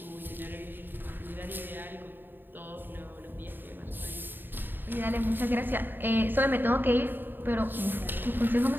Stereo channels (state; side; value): late; left; 0.094 ms